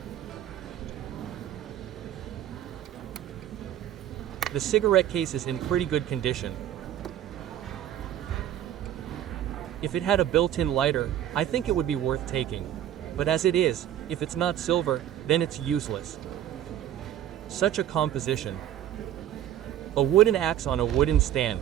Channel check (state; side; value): quieter; left; 11.4 dB